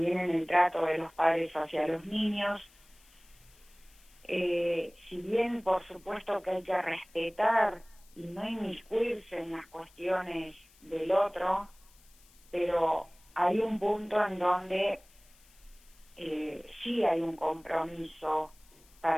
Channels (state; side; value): noise; left; hiss, 28 dB below the sound